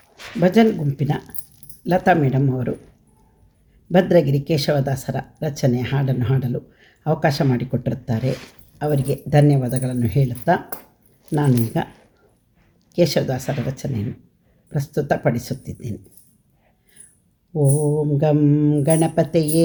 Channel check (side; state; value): both; identical; correlation 1.00